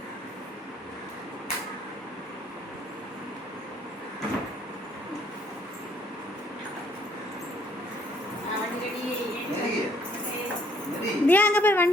தியா அங்க போய்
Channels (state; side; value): normal; both; correlation 0.64